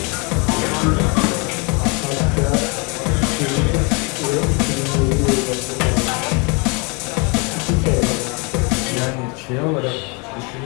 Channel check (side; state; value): right; quieter; 31.4 dB